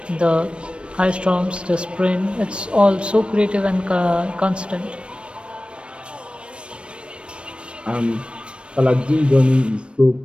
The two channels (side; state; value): left; late; 0.058 ms